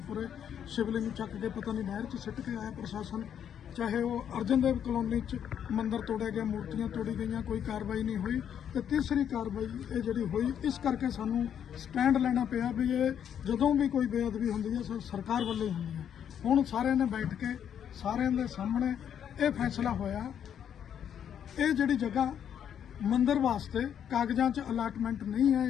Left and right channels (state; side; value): quieter; right; 8.9 dB